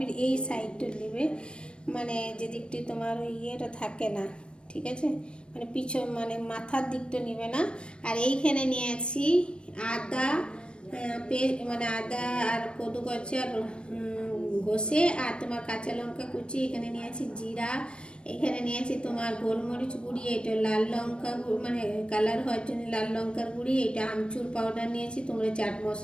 এই সাইডটা নেবে, মানে যে দিকটি তোমার ওই ইয়েটা থাকে না, ঠিক আছে, মানে পিছন মানে মাথার দিকটা নেবে না। আর এইখানে নিয়েছি আদা, মানে আদা আর কদু গছে আর ঘষে, আর তোমার কাঁচা লঙ্কা কুচি, এখানে নিয়েছি জিরা, এখানে নিয়েছি তোমার গোলমরিচ গুঁড়ি, এটা লাল লঙ্কা মানে কালার হওয়ার জন্য লাল লঙ্কার গুঁড়ি, এটা আমচুর পাউডার নিয়েছি, তোমরা চাট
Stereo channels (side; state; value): right; late; 0.056 ms